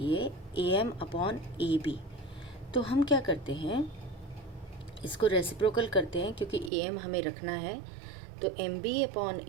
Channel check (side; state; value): left; drops out; at 6.7 s